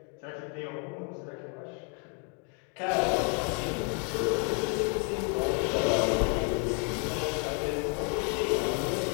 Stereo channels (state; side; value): quieter; right; 39.2 dB